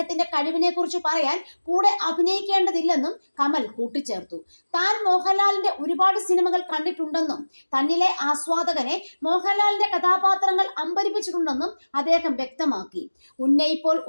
കഴിവിനെ കുറിച്ച് പറയാൻ കൂടെ അഭിനയിക്കേണ്ടതില്ലെന്നും കമൽ കൂട്ടിച്ചേർത്തു. താൻ മോഹൻലാലിന്റെ ഒരുപാട് സിനിമകൾ കണ്ടിട്ടുണ്ടെന്നും തന്നിലെ ആസ്വാദകനെ മോഹൻലാലിന്റെ കഥാപാത്രങ്ങൾ അമ്പരിപ്പിച്ചിട്ടുണ്ടെന്നും അദ്ദേഹം വ്യക്തമാക്കി. ഉന്നയിപ്പോൾ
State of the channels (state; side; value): inverted; both; correlation -1.00